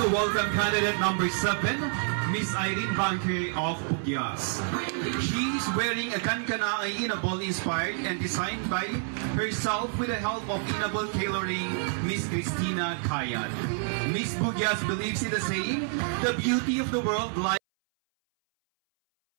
welcome candidate number 7, Miss Irene Banque of Pugyas. She is wearing a kankana Inabol inspired and designed by herself with the help of Inabol tailoring Miss Christina Kayat. Miss Pugyas believes in the saying, the beauty of the world lies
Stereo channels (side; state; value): left; silent; 59 dB below the other